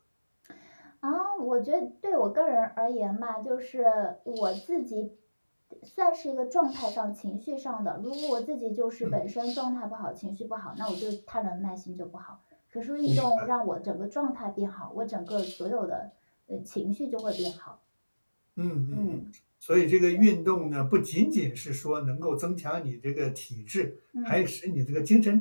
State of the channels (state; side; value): inverted; both; correlation -1.00